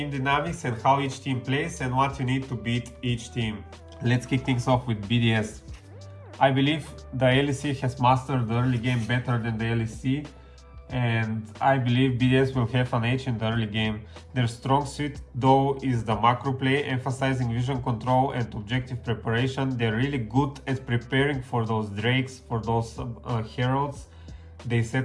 dynamics and how each team plays and what you need to beat each team. Let's kick things off with BDS. I believe the LEC has mastered the early game better than the LEC, and I believe BDS will have an edge in the early game. Their strong suit though is the macro play, emphasizing vision control and objective preparation. They're really good at preparing for those drakes, for those heralds. They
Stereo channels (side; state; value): both; identical; correlation 1.00